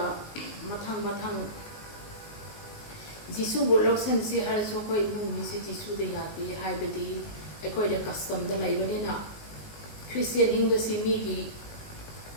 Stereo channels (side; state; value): right; late; 19 ms